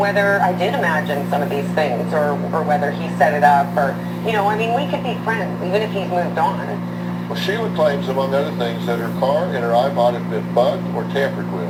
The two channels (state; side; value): identical; both; correlation 1.00